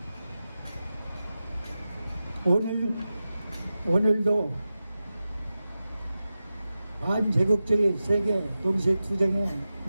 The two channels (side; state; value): both; inverted; correlation -0.93